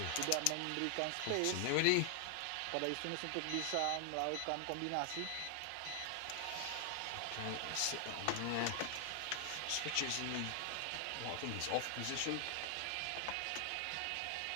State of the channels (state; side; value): different; both; correlation 0.00